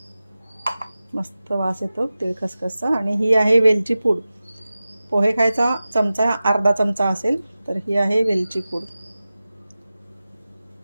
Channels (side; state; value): both; inverted; correlation -0.95